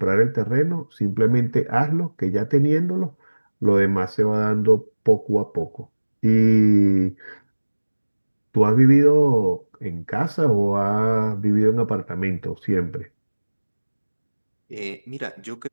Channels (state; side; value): inverted; both; correlation -1.00